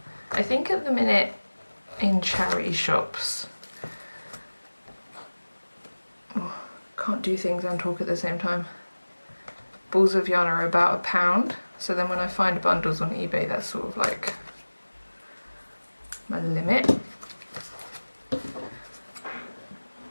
I think at the minute in charity shops, can't do things and talk at the same time, balls of yarn are about £1, so then when I find bundles on eBay, that's sort of like my limit.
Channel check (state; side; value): inverted; both; correlation -1.00